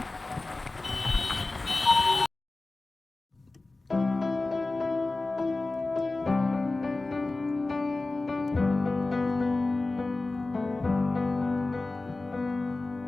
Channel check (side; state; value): right; quieter; 3.2 dB